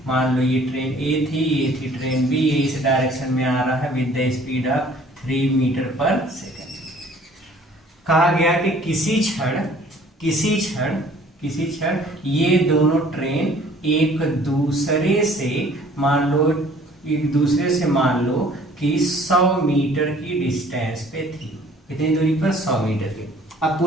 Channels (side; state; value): both; normal; correlation 0.54